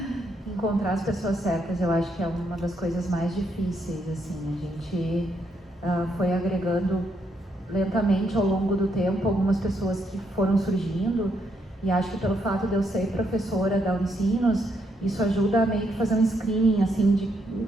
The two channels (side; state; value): both; normal; correlation 0.76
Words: Encontrar as pessoas certas, eu acho que é uma das coisas mais difíceis, assim. A gente foi agregando lentamente ao longo do tempo algumas pessoas que foram surgindo, e acho que pelo fato de eu ser professora da Unicinos, isso ajuda a meio que fazer um screening assim